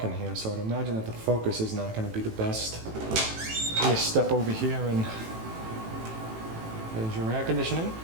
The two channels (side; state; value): left; late; 18 ms